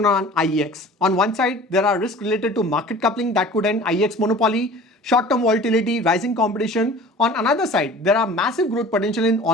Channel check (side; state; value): both; normal; correlation 0.43